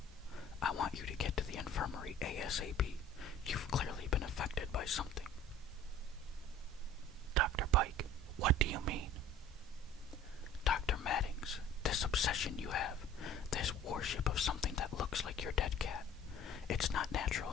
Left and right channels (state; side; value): normal; both; correlation 0.46